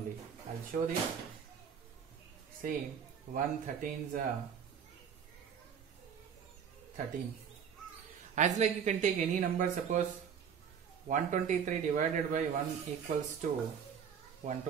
I'll show this. See, 1 13 is 13. As like you can take any number, suppose 123 divided by 1 equals to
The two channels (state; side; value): quieter; left; 7.5 dB